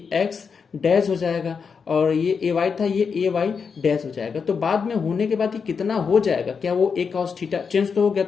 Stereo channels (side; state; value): right; quieter; 5.8 dB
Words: डैश हो जाएगा, और ये AY था, ये AY डैश हो जाएगा। तो बाद में होने के बाद ये कितना हो जाएगा, क्या वो ए कॉस थीटा चेंज तो हो गया,